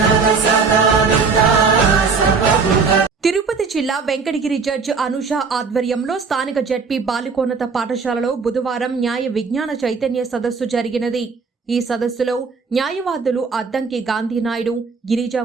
Tirupati జిల్లా Venkatagiri judge Anusha ఆధ్వర్యంలో స్థానిక జడ్పీ బాలికోన్నత పాఠశాలలో బుధవారం న్యాయ విజ్ఞాన చైతన్య సదస్సు జరిగినది. ఈ సదస్సులో న్యాయవాదులు అద్దంకి గాంధీనాయుడు, గిరిజా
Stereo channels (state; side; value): quieter; left; 5.0 dB